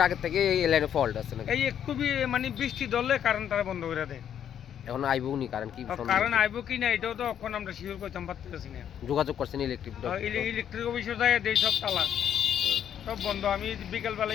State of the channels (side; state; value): right; quieter; 9.4 dB